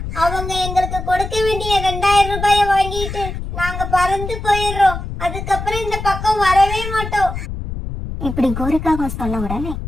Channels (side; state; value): left; noise; rumble, 7 dB below the sound